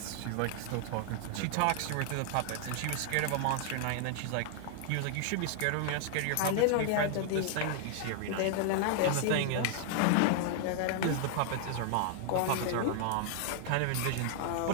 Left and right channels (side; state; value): both; different; correlation 0.00